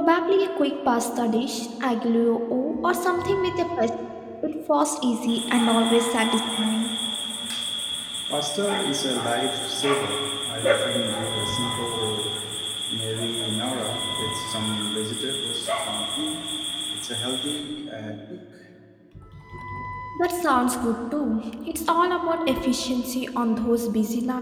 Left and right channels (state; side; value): identical; both; correlation 1.00